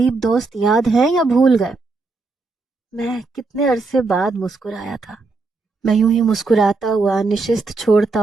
دوست یاد ہیں یا بھول گئے؟ میں کتنے عرصے بعد مسکرایا تھا۔ میں یوں ہی مسکراتا ہوا نشست چھوڑتا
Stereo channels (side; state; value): left; quieter; 3.8 dB